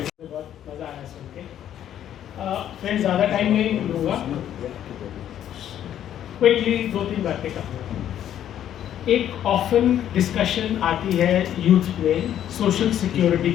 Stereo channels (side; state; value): right; quieter; 10.7 dB